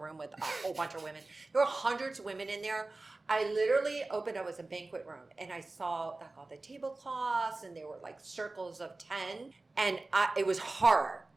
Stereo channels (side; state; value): left; quieter; 3.2 dB